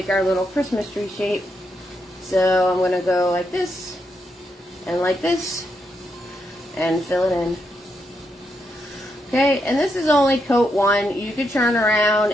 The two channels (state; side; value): normal; both; correlation 0.81